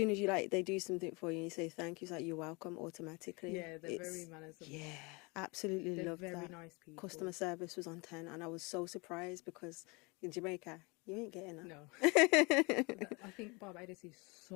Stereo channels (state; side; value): quieter; right; 28.0 dB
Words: as you they do something for you and you say thank you, it's like you're welcome automatically. Yeah, they're very manageable. Yeah, absolutely They're loved very that. nice people. Customer service was on 10 and I was so surprised because in Jamaica, you ain't getting that. No. I think Barbados is